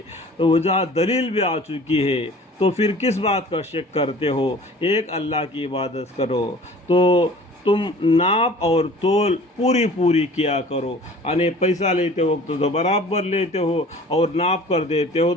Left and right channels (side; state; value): both; normal; correlation 0.46